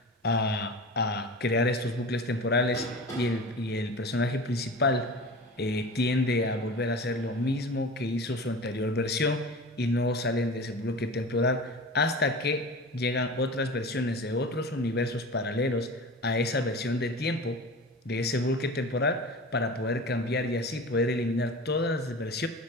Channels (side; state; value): both; normal; correlation 0.34